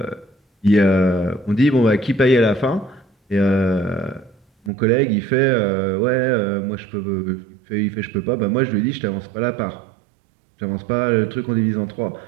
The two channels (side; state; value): left; drops out; at 4.7 s